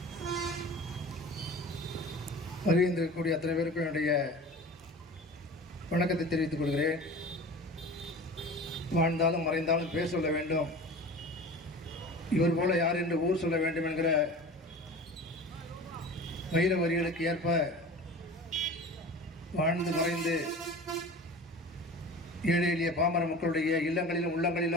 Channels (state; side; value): normal; both; correlation 0.37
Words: வருகின்றக்கூடிய அத்தனை பேருக்கும் என்னுடைய வணக்கத்தை தெரிவித்துக் கொள்கிறேன். வாழ்ந்தாலும் மறைந்தாலும் பேர் சொல்ல வேண்டும், இவர் போல யார் என்று ஊர் சொல்ல வேண்டும் என்கிற வைர வரிகளுக்கு ஏற்ப வாழ்ந்து மறைந்து ஏழை எளிய பாமர மக்களுடைய இல்லங்களிலும்